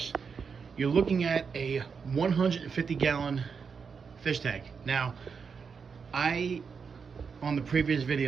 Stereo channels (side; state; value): left; quieter; 5.8 dB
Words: you're looking at a 150-gallon fish tank. Now, on the previous